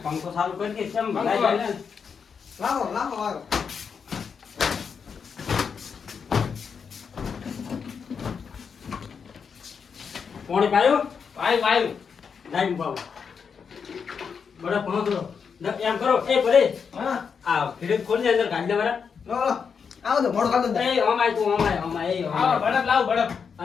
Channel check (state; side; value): quieter; right; 6.2 dB